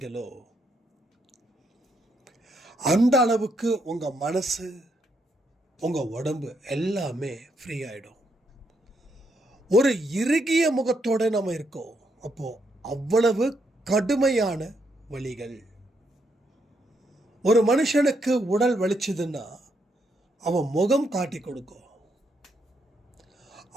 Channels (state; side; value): normal; both; correlation 0.77